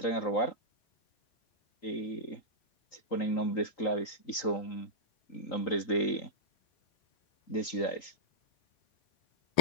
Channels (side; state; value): right; late; 3.8 ms